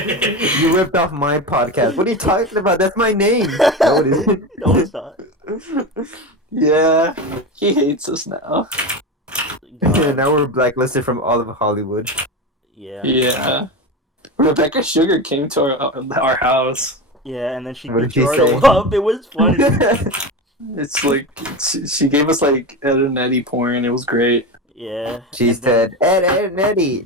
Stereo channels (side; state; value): both; normal; correlation 0.22